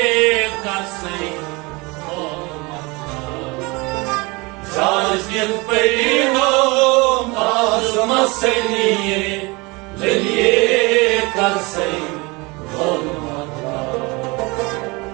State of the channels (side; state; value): left; quieter; 25.8 dB